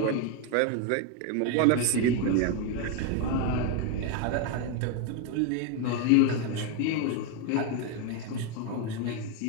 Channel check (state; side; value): different; both; correlation 0.02